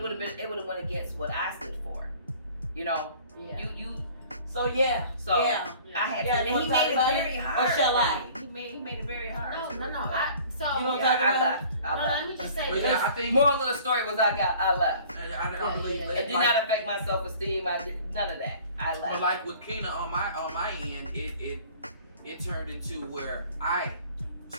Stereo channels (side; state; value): both; inverted; correlation -0.49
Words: would have went against what I stood for. Yeah. You. So yeah. So yeah. I had Yeah, to. you wanna He talk made it about very it? hard. Or shall for I? me. He made it very hard. No. You don't Yeah, talk I about left. No, let me just say But this. yeah, I think Moral of the story was I left. I believe Yeah. that. It did not affect my self-esteem. I did none of that. I left. But like with Keena on my end, it turned into where I